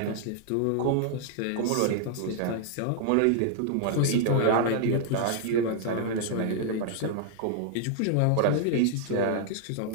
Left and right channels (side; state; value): both; different; correlation -0.01